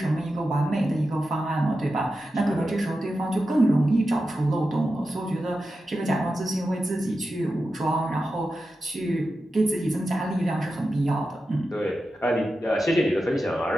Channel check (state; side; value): normal; both; correlation 0.91